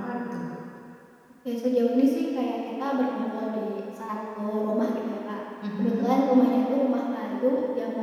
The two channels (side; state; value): both; identical; correlation 1.00